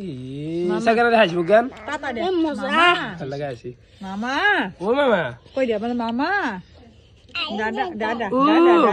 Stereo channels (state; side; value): identical; both; correlation 1.00